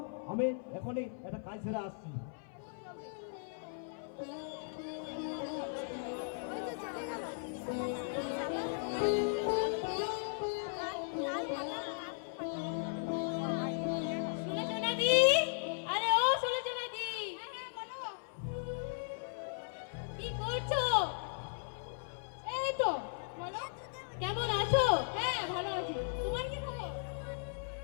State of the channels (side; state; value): right; silent; 53 dB below the other